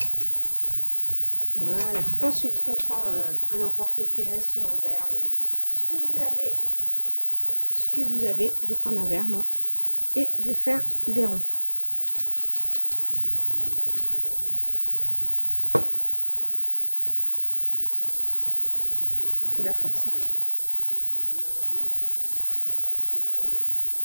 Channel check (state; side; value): inverted; both; correlation -1.00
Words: Voilà. Ensuite, on prend un emporte-pièce ou un verre ou ce que vous avez. Je vais prendre un verre, moi, et je vais faire des ronds. Il faut de la force. Hein.